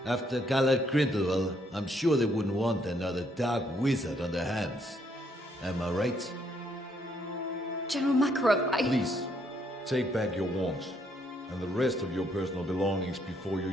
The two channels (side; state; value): both; normal; correlation 0.71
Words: After Gallard Grindelwald, I'm sure they wouldn't want another dark wizard on their hands. Am I right? General Makarov, Please, take back your wand and the rest of your personal belongings before you